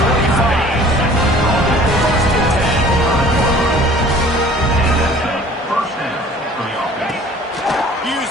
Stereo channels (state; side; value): normal; both; correlation 0.49